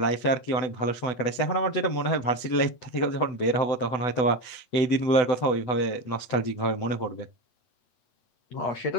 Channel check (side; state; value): right; late; 8.0 ms